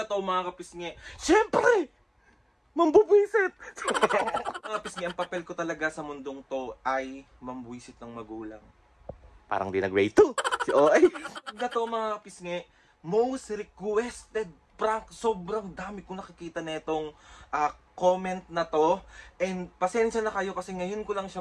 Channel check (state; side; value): identical; both; correlation 1.00